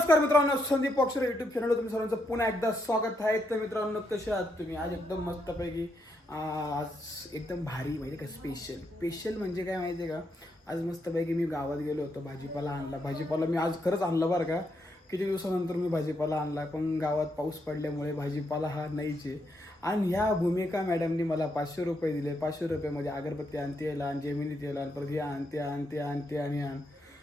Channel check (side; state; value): both; normal; correlation 0.79